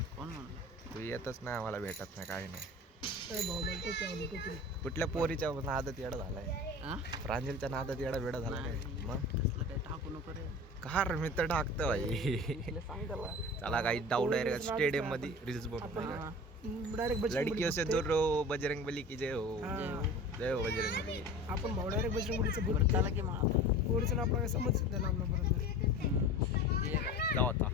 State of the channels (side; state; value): both; normal; correlation 0.37